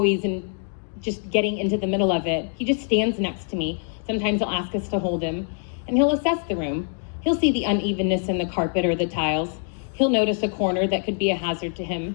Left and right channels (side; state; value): right; silent; 55 dB below the other